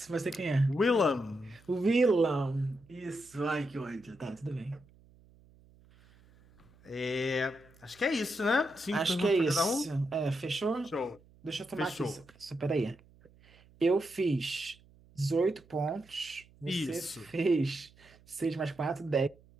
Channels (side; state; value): right; noise; hum, 27 dB below the sound